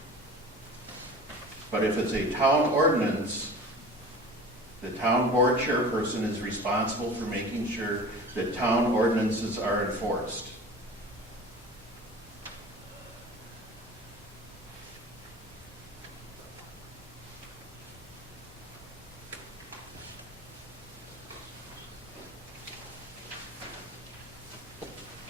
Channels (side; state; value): both; normal; correlation 0.39